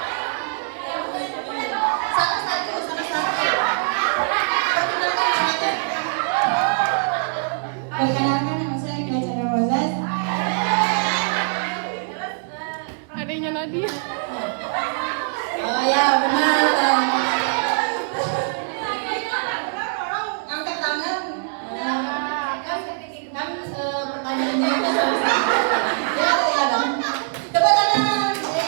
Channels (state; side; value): silent; left; digital silence